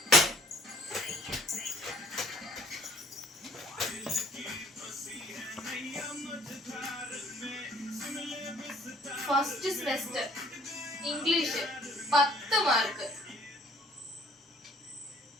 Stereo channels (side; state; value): both; normal; correlation 0.58